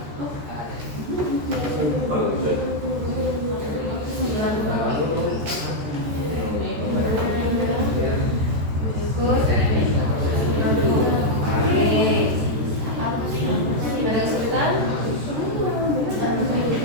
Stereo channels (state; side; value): late; left; 14 ms